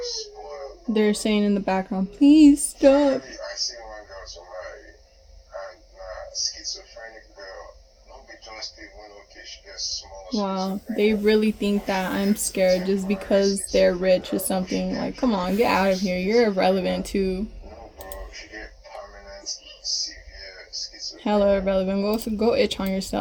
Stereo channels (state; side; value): identical; both; correlation 1.00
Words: they're saying in the background, please stop. Wow, they really think that I'm scared just because they're rich or something. Like, come on, get out of here. You're irrelevant too. Hella irrelevant. Go itch on